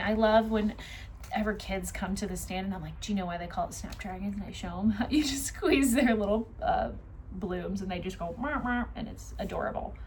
love whenever kids come to the stand and I'm like, do you know why they call it Snapdragons? And I show them how you just squeeze their little blooms and they just go, mah, mah, and it's adorable.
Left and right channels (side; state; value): both; identical; correlation 1.00